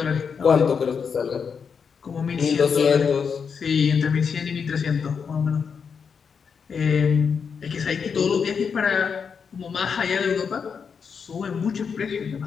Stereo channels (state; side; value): quieter; right; 6.2 dB